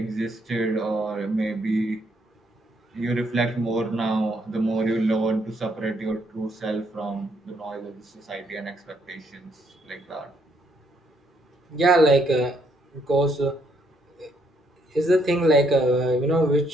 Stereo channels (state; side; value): normal; both; correlation 0.72